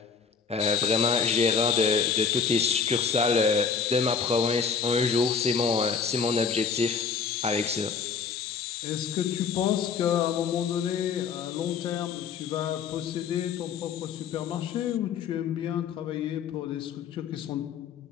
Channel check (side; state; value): right; quieter; 6.0 dB